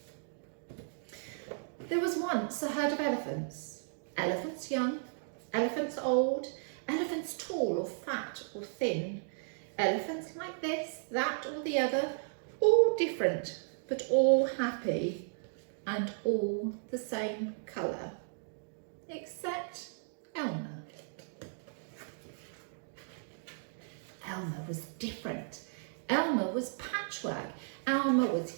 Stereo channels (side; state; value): left; silent; digital silence